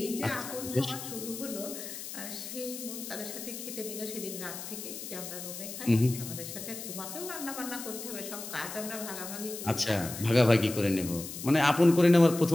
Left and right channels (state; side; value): noise; left; hiss, 9 dB below the sound